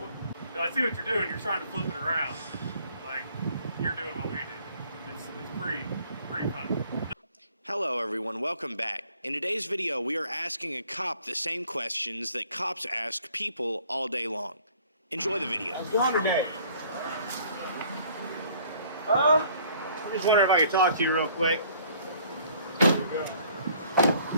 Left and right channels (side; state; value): both; inverted; correlation -0.58